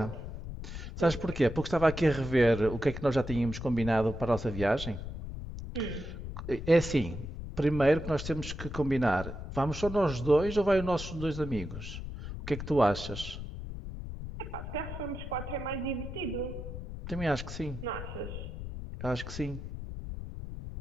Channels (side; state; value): left; noise; rumble, 8 dB below the sound